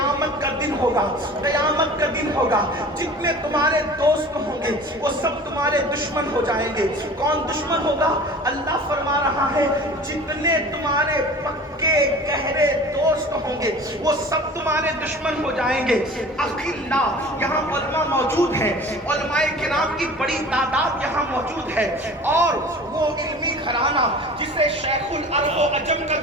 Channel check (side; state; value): both; normal; correlation 0.42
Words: کا دن ہوگا، قیامت کا دن ہوگا، جتنے تمہارے دوست ہوں گے وہ سب تمہارے دشمن ہو جائیں گے۔ کون دشمن ہوگا؟ اللہ فرما رہا ہے جتنے تمہارے پکے گہرے دوست ہوں گے وہ سب تمہارے دشمن ہو جائیں گے۔ اخلاء، یہاں علماء موجود ہیں، علماء کرام کی بڑی تعداد یہاں موجود ہے، اور وہ علمی گھرانہ جسے شیخ العرب و عجم کا